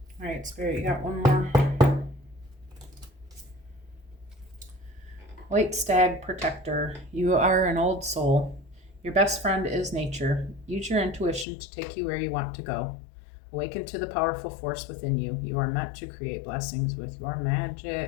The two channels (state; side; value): drops out; right; at 11.5 s